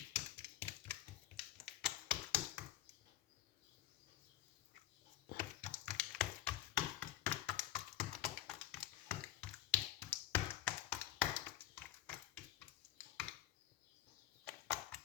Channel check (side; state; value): right; quieter; 13.4 dB